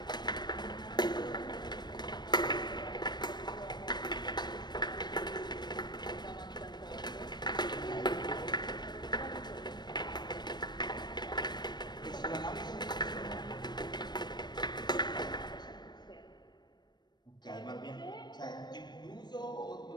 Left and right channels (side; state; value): right; late; 0.21 ms